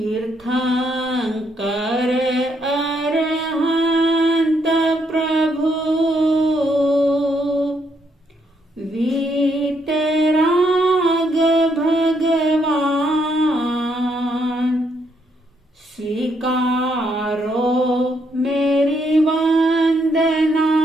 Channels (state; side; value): normal; both; correlation 0.74